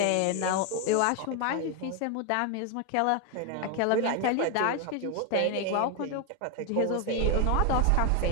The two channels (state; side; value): different; both; correlation 0.01